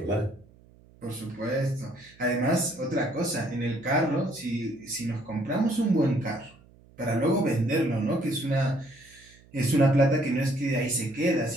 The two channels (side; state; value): right; noise; hum, 27 dB below the sound